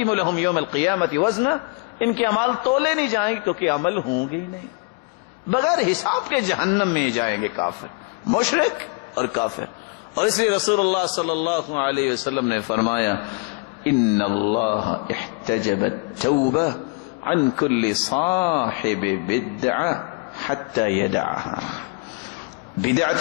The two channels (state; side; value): quieter; right; 32.4 dB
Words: لهم یوم القیامت وزنا. ان کے اعمال تولے نہیں جائیں گے کیونکہ عمل ہوں گے ہی نہیں. بغیر حساب کے جہنم میں جائیں گے کافر، مشرک اور کافر. اور اس لیے رسول اللہ صلی اللہ علیہ وسلم نے فرمایا ان اللہ احتجب التوبہ عن كل صاحب بدعہ حتی یدعها.